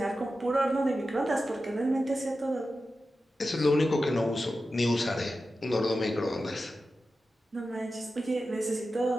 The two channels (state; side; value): normal; both; correlation 0.92